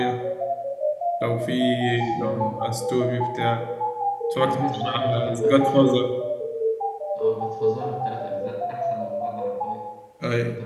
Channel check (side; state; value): both; identical; correlation 1.00